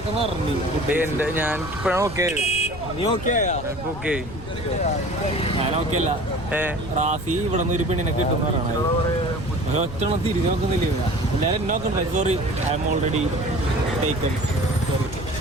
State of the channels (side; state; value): left; noise; rumble, 13 dB below the sound